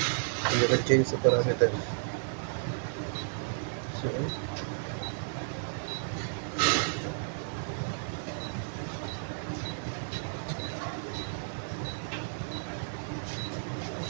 And you can change the parameters. So,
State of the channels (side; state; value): left; silent; digital silence